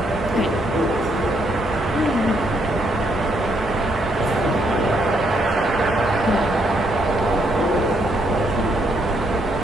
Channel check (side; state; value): both; normal; correlation 0.74